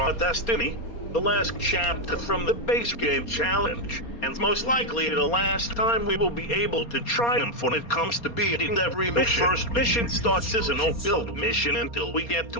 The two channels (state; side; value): late; right; 4.3 ms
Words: destiny, the last chapter from the base game challenge, and most likely the last time we will be able to triumph when it comes to beating every mission. The first mission starts as a no-build mission until we get